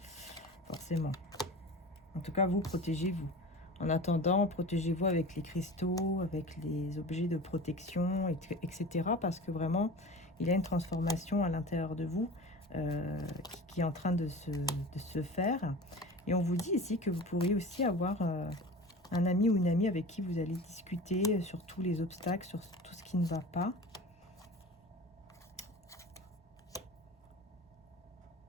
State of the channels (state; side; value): normal; both; correlation 0.35